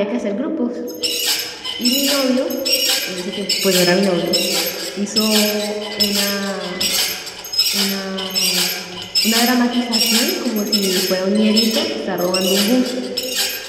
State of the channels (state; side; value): identical; both; correlation 1.00